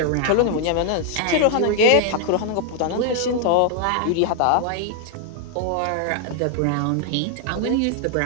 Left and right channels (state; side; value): different; both; correlation 0.00